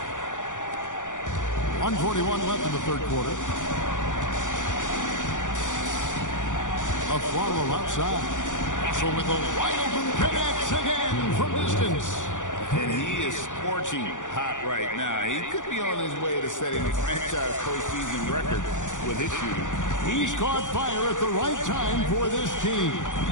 1:41 left in the third quarter. A follow outside. Russell with a wide open connects again from distance. And he is scorching hot right now. He could be on his way to setting a franchise postseason record with his shooting. He's caught fire at the right time for this team.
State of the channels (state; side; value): late; right; 0.87 ms